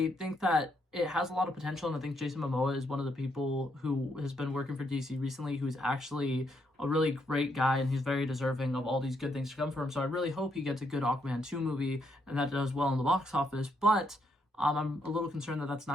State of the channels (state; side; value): normal; both; correlation 0.76